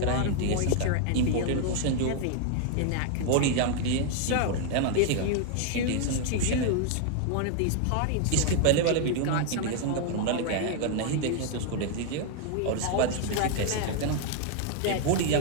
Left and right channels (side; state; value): both; different; correlation 0.00